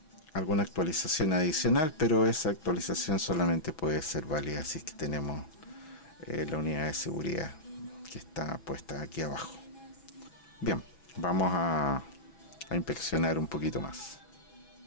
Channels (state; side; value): late; right; 6.2 ms